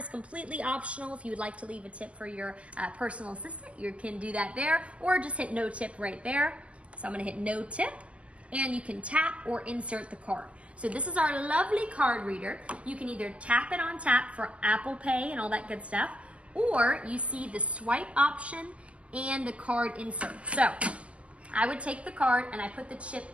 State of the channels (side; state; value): left; late; 0.060 ms